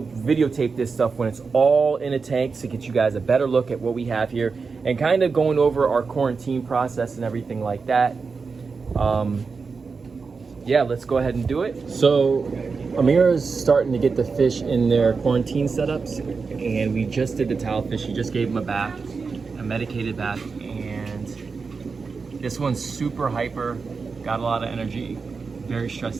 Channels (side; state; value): left; quieter; 4.8 dB